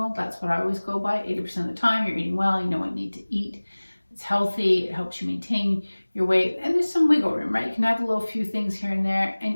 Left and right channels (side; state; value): both; inverted; correlation -1.00